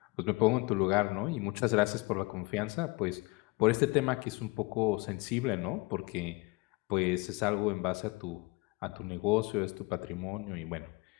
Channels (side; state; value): right; quieter; 25.2 dB